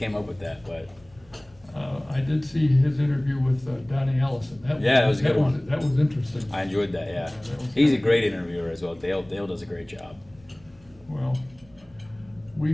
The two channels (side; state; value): right; noise; hum, 28 dB below the sound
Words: up with that, but I did see his interview with Donnie Allison. That was a good one. That was interesting. I enjoyed that. Yeah, that was he's a good. great interviewer as well. Dale does a great job. Well, we